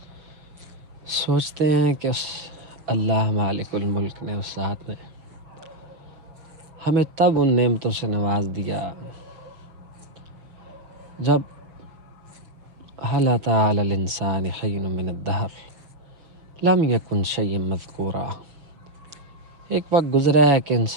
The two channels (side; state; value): left; late; 6.3 ms